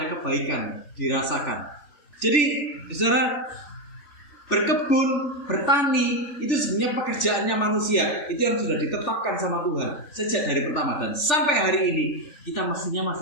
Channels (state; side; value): late; right; 3.4 ms